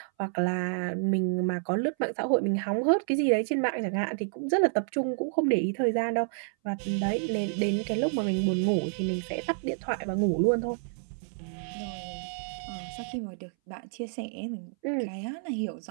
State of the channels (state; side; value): silent; left; 58 dB below the other